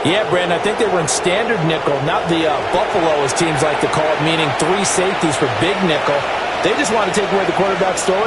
Yeah, Brandon, I think they were in standard nickel, not the Buffalo, as teams like to call it, meaning 3 safeties for big nickel. They just want to take away the quarterback's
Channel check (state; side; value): identical; both; correlation 1.00